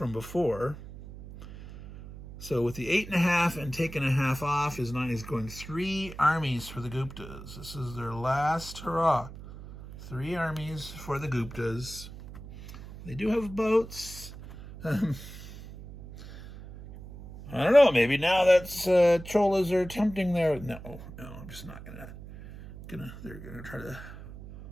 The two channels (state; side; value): noise; right; hum, 14 dB below the sound